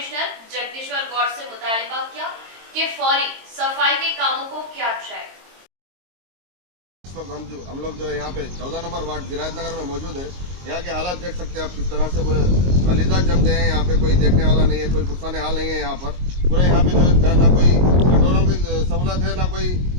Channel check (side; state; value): left; late; 22 ms